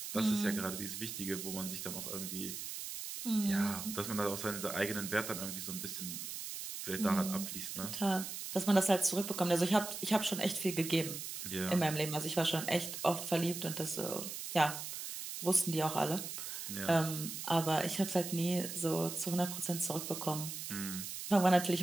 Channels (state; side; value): noise; right; hiss, 7 dB below the sound